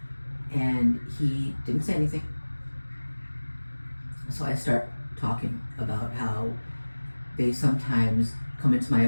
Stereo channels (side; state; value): both; inverted; correlation -1.00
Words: And he didn't say anything. So I start talking about how they sometimes come into my